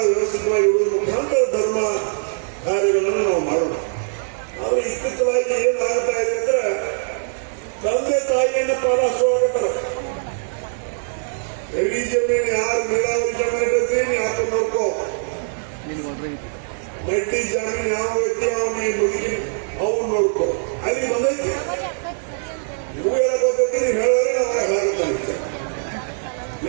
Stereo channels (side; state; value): left; silent; digital silence